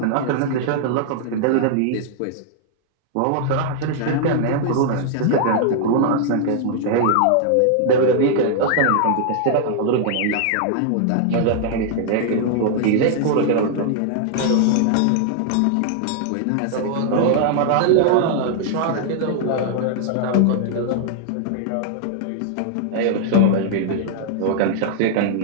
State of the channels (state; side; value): different; both; correlation -0.01